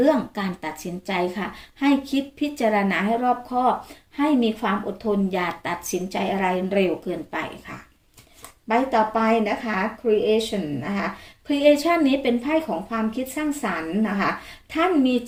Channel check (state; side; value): identical; both; correlation 1.00